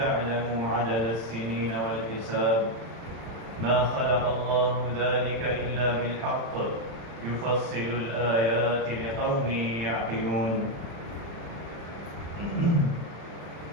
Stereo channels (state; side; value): late; left; 35 ms